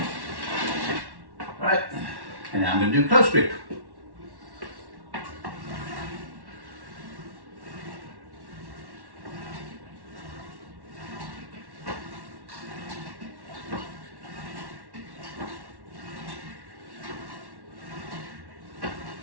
Right. And now I'm going to do close grip.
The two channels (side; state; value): left; late; 1.1 ms